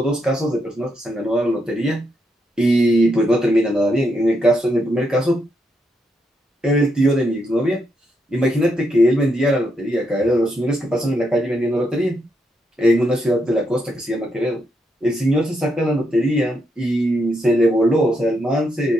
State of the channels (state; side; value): normal; both; correlation 0.80